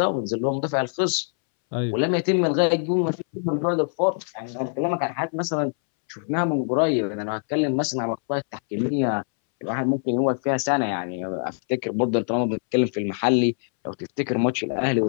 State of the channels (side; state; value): right; silent; 63 dB below the other